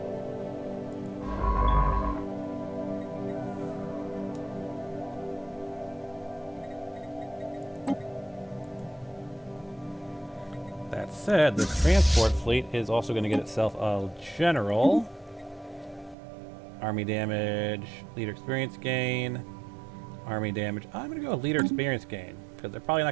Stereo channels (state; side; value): drops out; left; at 16.2 s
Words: That said, this transport fleet is also going to get itself a general. Army damage, leader experience gain, army damage. I'm going to go with leader experience gain, because they're probably